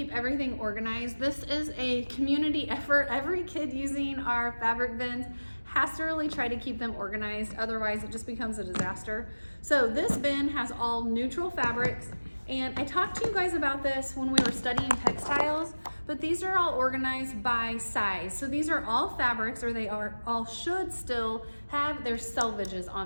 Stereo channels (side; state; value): both; inverted; correlation -1.00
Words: everything organized. This is a community effort. Every kid using our fabric bins has to really try to keep them organized, otherwise it just becomes a disaster. So this bin has all neutral fabrics, and I talked to you guys about this when we were studying textiles, but these are all organized by size. So these are all fabrics, or they are all should still have their selvages